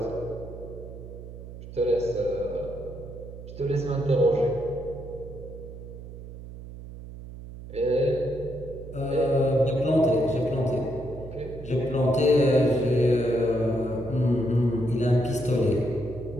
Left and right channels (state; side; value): noise; right; hum, 13 dB below the sound